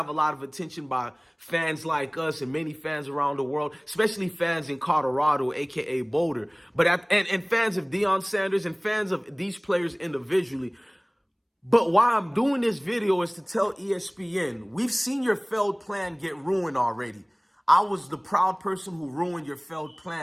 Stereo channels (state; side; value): identical; both; correlation 1.00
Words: a lot of attention by fans like us and many fans around the world, especially fans in Colorado, aka Boulder. And fans of Deion Sanders and fans of these players individually. But why I'm doing this video is to tell ESPN, we've seen your failed plan get ruined already. I was the proud person who ruined your failed